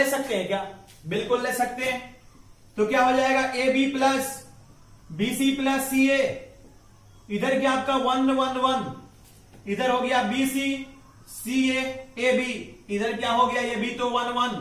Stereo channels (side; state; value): both; identical; correlation 1.00